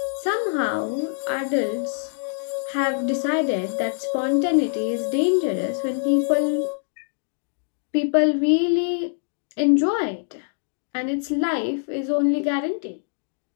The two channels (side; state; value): right; silent; digital silence